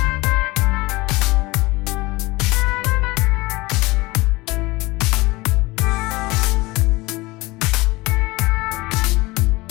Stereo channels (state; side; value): quieter; right; 22.0 dB